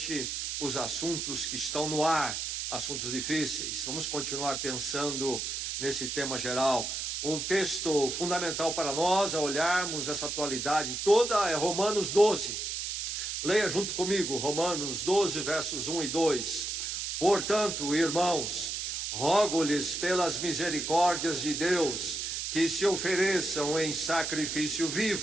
os assuntos que estão no ar, assuntos difíceis. Vamos continuar pensando nesse tema geral. Um texto fundamental para nós a olharmos essa atualidade toda é Romanos 12. Leia junto comigo, Romanos 12, versos 1 e 2. Portanto, irmãos, rogo-lhes pelas misericórdias de Deus que se ofereçam em sacrifício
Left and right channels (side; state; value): right; noise; hiss, 3 dB below the sound